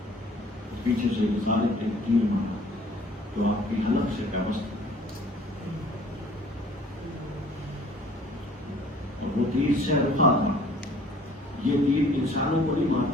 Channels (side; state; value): both; normal; correlation 0.53